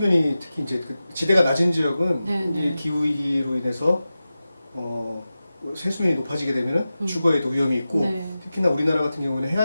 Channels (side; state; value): both; inverted; correlation -0.94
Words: 특히 이제 지대가 낮은 지역은 이 기후위기로 인해서 해수면이 높아지게 되면 주거에도 위험이 있고 특히나 우리나라 같은 경우는